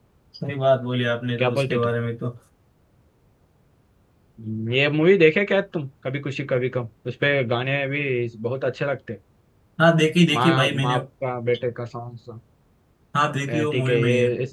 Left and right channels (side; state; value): both; identical; correlation 1.00